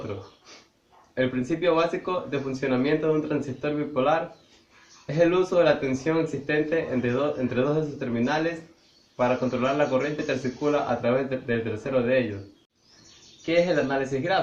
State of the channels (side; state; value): both; identical; correlation 1.00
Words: El principio básico de funcionamiento de un transistor bipolar es el uso de la tensión existente entre dos de sus terminales para controlar la corriente que circula a través del tercero de ellos. ¿Qué es el análisis